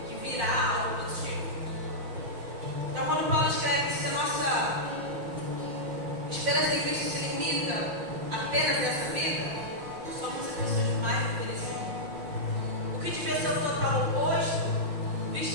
que virá algo positivo. Então, quando Paulo escreve que a nossa esperança em Cristo se limita apenas a essa vida, somos as pessoas mais infelizes. O que devia ser o total oposto,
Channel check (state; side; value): late; left; 5.6 ms